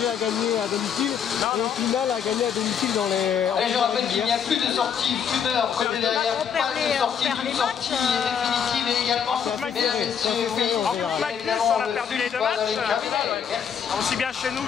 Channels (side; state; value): right; quieter; 7.7 dB